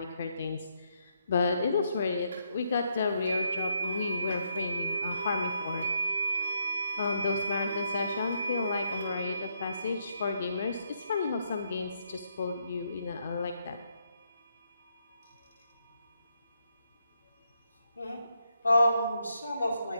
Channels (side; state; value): both; inverted; correlation -0.77